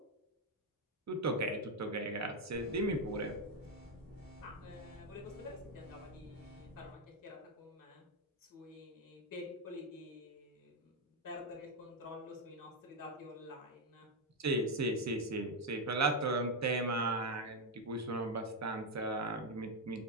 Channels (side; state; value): both; normal; correlation 0.05